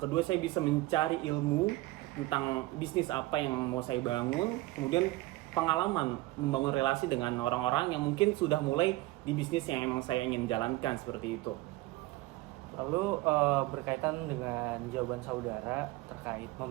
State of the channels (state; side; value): quieter; left; 19.1 dB